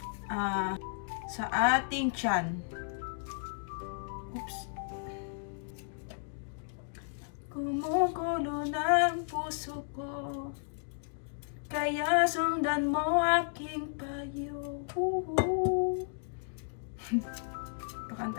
tiyan. Oops. Gumugulo ng puso ko, kaya sundan mo aking payo.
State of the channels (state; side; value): silent; right; digital silence